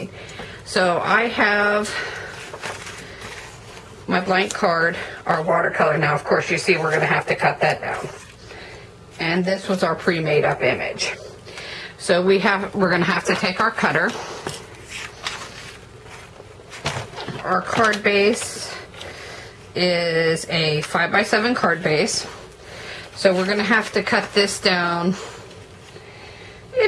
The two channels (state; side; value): identical; both; correlation 1.00